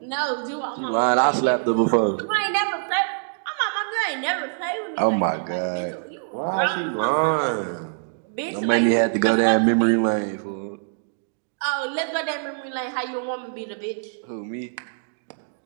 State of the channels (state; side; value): silent; left; digital silence